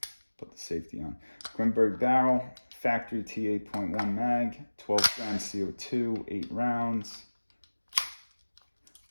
put the safety on. Grimburg barrel, factory T8.1 mag, 12 grams CO2, 8 rounds.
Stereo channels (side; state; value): both; inverted; correlation -1.00